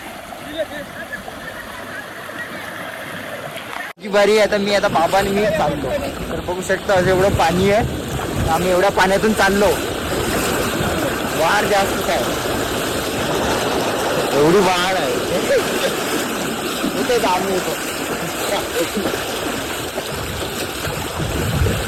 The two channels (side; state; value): both; identical; correlation 1.00